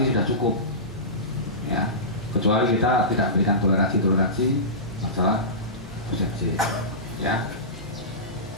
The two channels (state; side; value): normal; both; correlation -0.20